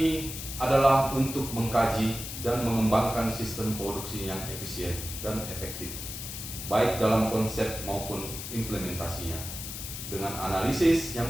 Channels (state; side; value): noise; left; hiss, 8 dB below the sound